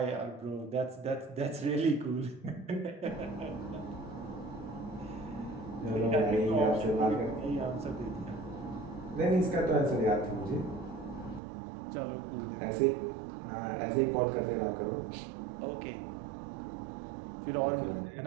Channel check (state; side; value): drops out; left; at 11.4 s